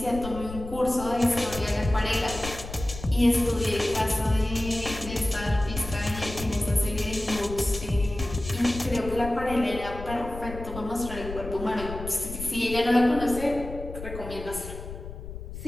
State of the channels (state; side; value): noise; left; rumble, 10 dB below the sound